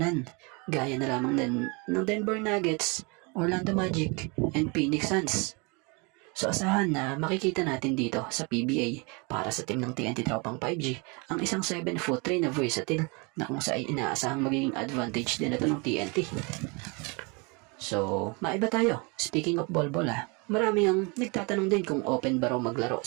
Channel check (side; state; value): left; quieter; 30.1 dB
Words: gaya na lamang ng Denver Nuggets, Orlando Magic, and Phoenix Suns. So asahan na makikita natin dito sa PBA para sa team ng TNT Tropang 5G ang isang 7'3" na versatile na kung saan inaasahang magiging advantage din ito ng TNT. So, maiba tayo. Speaking of Bolbol marami ang nagtatanong din kung open ba raw maglaro